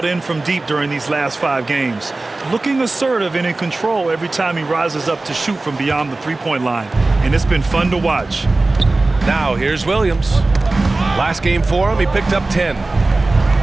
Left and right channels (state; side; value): quieter; left; 3.2 dB